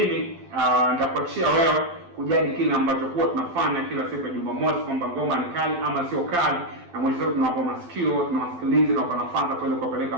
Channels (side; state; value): left; late; 12 ms